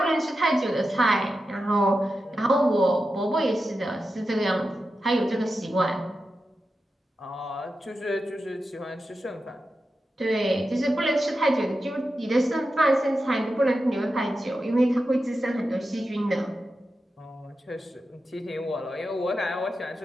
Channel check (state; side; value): normal; both; correlation 0.90